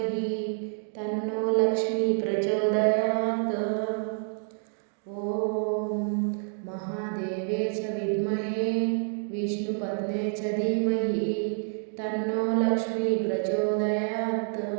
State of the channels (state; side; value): silent; left; 57 dB below the other